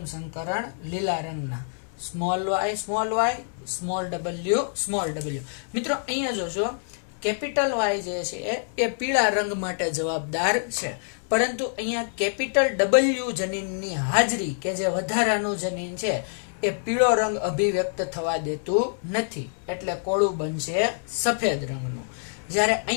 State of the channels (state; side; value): silent; right; 61 dB below the other